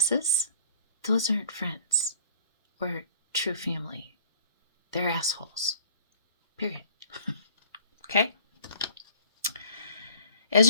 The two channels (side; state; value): both; inverted; correlation -0.53